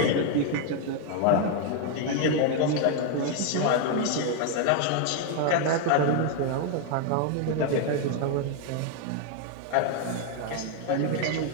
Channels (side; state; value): both; different; correlation 0.01